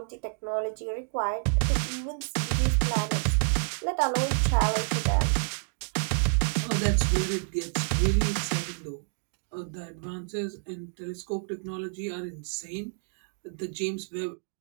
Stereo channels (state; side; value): silent; left; digital silence